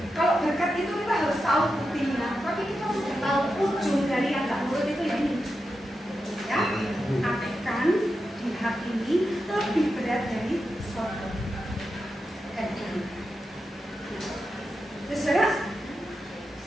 Kalau berkat itu kita harus tahu buktinya, tapi kita sudah tahu ujung dari yang nggak nurut itu ya ini, ya, akan dihakimi lebih berat dari Sodom. Terus saudara,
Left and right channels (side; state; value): both; normal; correlation 0.89